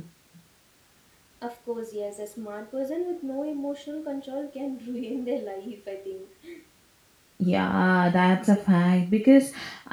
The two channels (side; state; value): both; identical; correlation 1.00